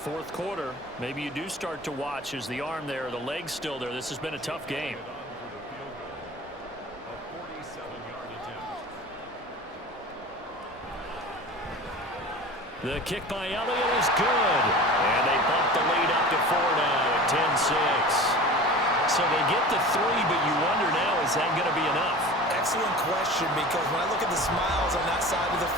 quarter. Maybe you do start to watch as the arm there, the leg's still there. This has been a tough game. The kick by Elliott is good. And they bump the lead up to 4 now at 10-6. So they get the 3, but you wonder now, is that going to be enough? Excellent question, because when I look at the smiles on that side of the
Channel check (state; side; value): normal; both; correlation 0.37